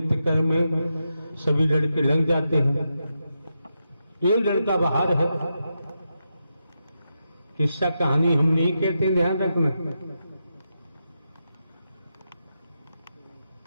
कर्म में सभी लड़के लग जाते हैं। एक लड़का बाहर है। किस्सा कहानी हम नहीं कहते, ध्यान रखना।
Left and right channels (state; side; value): inverted; both; correlation -0.86